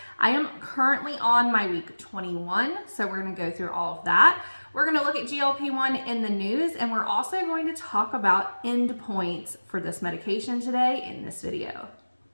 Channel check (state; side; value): inverted; both; correlation -1.00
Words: I am currently on my week 21, so we're going to go through all of that. We're going to look at GLP-1 in the news, and we're also going to talk about endpoints for this medication today in this video.